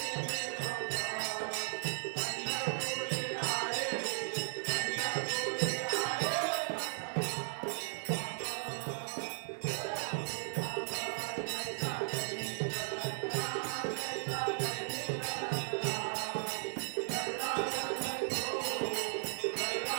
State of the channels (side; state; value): left; silent; digital silence